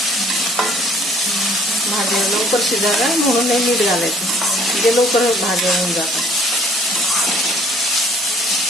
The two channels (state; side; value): normal; both; correlation 0.57